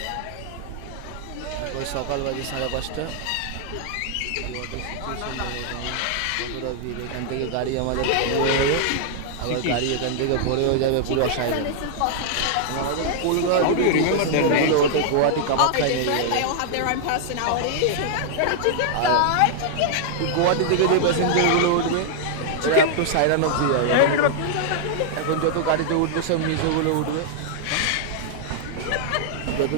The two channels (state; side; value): different; both; correlation -0.01